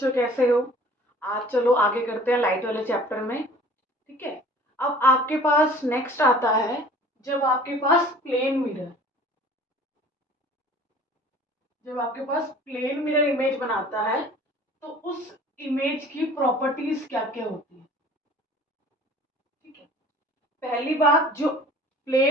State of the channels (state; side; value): normal; both; correlation 0.48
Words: कैसे हो? आज चलो आगे करते हैं लाइट वाले चैप्टर में। ठीक है। अब आपके पास नेक्स्ट आता है, जब आपके पास प्लेन मिरर जब आपके पास प्लेन मिरर इमेज बनाता है तो उस इमेज की प्रॉपर्टीज क्या क्या होती है। ठीक है। पहली बात, जो